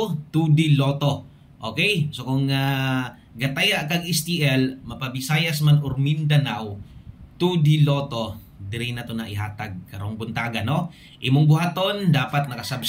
2D Lotto. Okay? So kung gataya kag STL mapabisayas man or Mindanao 2D Lotto, diri na to na ihatag karong buntaga, no? Imong buhaton dapat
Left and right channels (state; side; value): identical; both; correlation 1.00